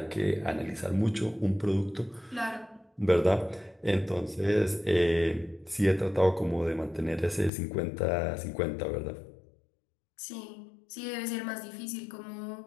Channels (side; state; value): right; drops out; at 7.5 s